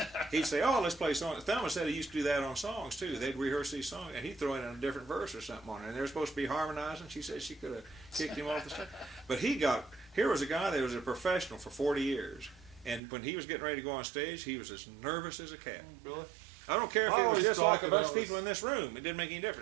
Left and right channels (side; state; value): left; drops out; at 13.0 s